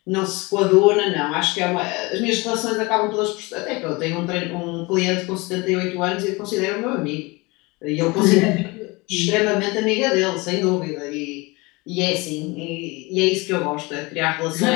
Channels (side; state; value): right; quieter; 24.8 dB